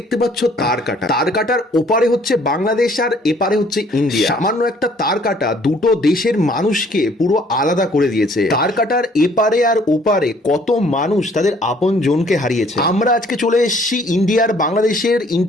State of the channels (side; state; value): both; normal; correlation 0.60